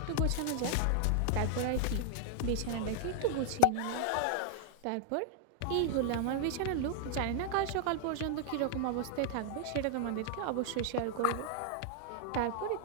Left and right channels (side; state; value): both; different; correlation 0.00